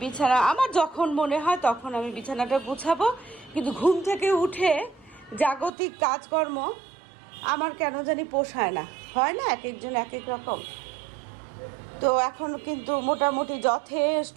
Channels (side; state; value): left; drops out; at 5.7 s